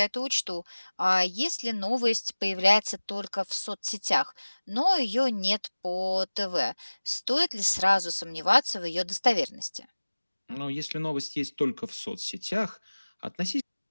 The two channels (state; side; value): inverted; both; correlation -1.00